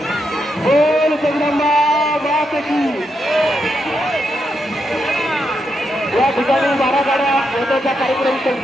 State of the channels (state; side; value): normal; both; correlation 0.82